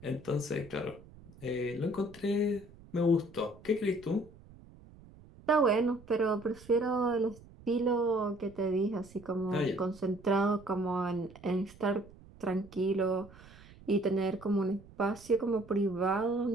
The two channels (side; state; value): right; noise; rumble, 21 dB below the sound